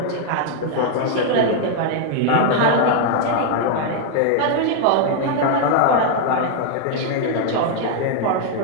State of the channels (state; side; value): different; both; correlation 0.00